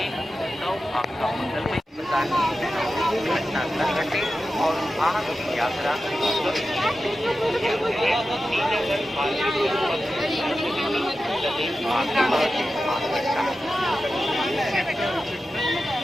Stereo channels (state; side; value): normal; both; correlation 0.92